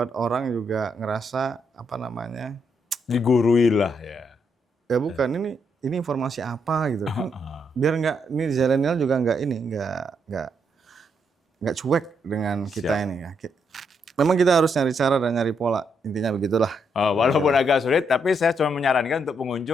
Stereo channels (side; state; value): both; normal; correlation 0.77